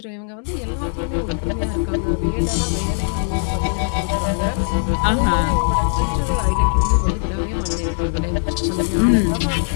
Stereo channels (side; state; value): right; silent; digital silence